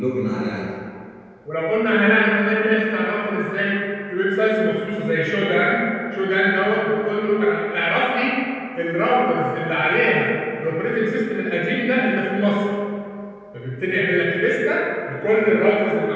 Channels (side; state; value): both; identical; correlation 1.00